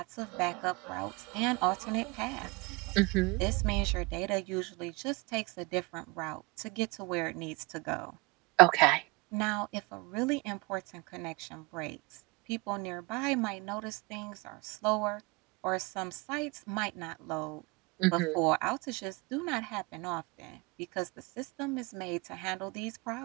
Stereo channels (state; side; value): quieter; left; 26.2 dB